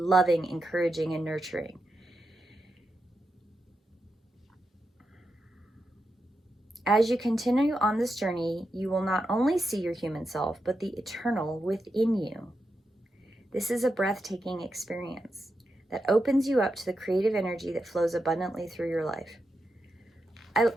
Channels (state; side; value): normal; both; correlation 0.87